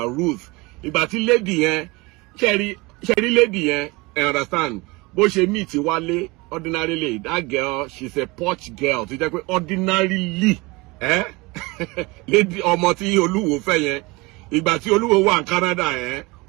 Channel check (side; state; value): left; quieter; 24.2 dB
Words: roots. Ìgbà tí lady yẹn ṣẹ́rí lady yẹn, I understand, bó ṣe meet Wálé ordinarily, that girl, she's a posh girl tó jẹ́ pé ordinarily, lady ọmọ tí Olúwo fẹ́ yẹn, ìgbà tí Olúwo wà ní Canada yẹn,